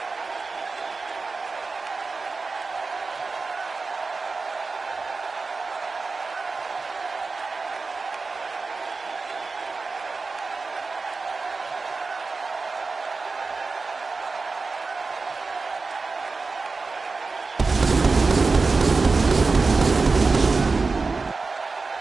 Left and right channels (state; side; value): quieter; left; 4.1 dB